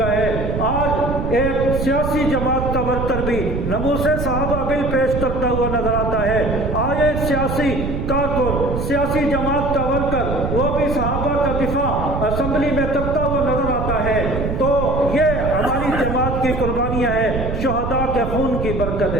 ہے، آج ایک سیاسی جماعت کا ورکر بھی ناموس صحابہ بل پیش کرتا ہوا نظر آتا ہے، آج ایک سیاسی کارکن، سیاسی جماعت کا ورکر وہ بھی صحابہ کا دفاع اسمبلی میں کرتا ہوا نظر آتا ہے۔ تو یہ ہماری جماعت کی قربانیاں ہیں، شہداء کے خون کی برکت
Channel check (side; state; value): right; noise; rumble, 3 dB below the sound